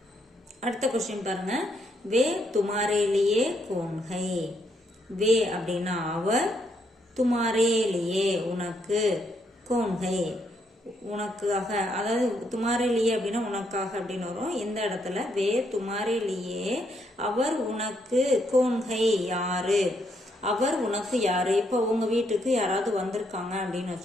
அடுத்த கொஸ்டின் பாருங்க. வே துமாரே லியே கோன் ஹை. வே அப்படின்னா அவர், துமாரே லியே உனக்கு, கோன் ஹை உனக்காக, அதாவது துமாரே லியே அப்படின்னா உனக்காக அப்படின்னு வரும். இந்த இடத்துல வே துமாரே லியே அவர் உனக்கு, கோன் ஹை யாரு, அவர் உனக்கு யாரு. இப்போ உங்க வீட்டுக்கு யாராவது வந்திருக்காங்க அப்படின்னு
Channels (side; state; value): both; normal; correlation 0.75